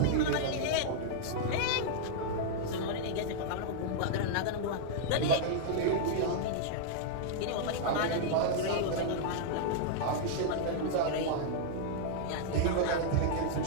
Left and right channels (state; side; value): different; both; correlation -0.01